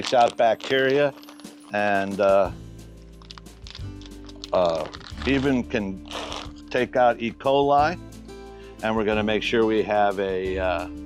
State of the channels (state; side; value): identical; both; correlation 1.00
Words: out bacteria and even can take out E. coli. And we're going to make sure we have